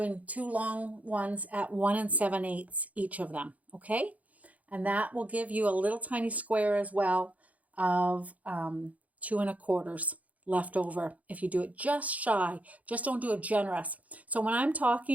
2 long ones at 1 7/8 each of them, okay? And that will give you a little tiny square as well of 2 1/4 left over if you do it just shy. Just don't do it generous. So when I'm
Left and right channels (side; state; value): left; late; 0.072 ms